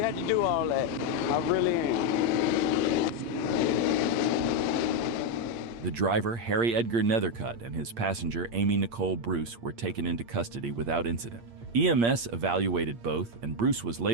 had to do all that. I really am. The driver, Harry Edgar Nethercutt, and his passenger, Amy Nicole Bruce, were taken into custody without incident. EMS evaluated both, and Bruce was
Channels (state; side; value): late; left; 8.6 ms